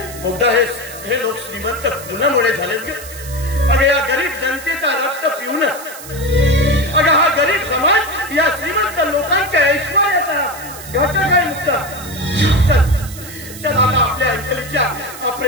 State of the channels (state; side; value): noise; right; hiss, 14 dB below the sound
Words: मुद्दा हे लोक श्रीमंत कुणामुळे झालेत ग? अगं या गरीब जनतेचा रक्त पिऊनच. अगं हा गरीब समाज या श्रीमंत लोकांच्या ऐश्वर्याचा घटक आहे. मुद्दा चल आता आपल्या अंजलीच्या